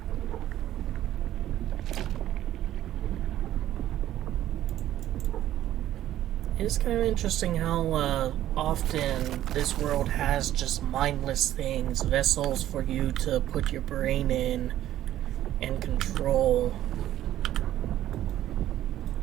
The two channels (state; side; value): quieter; left; 12.9 dB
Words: It's kind of interesting how often this world has just mindless things, vessels for you to put your brain in and control.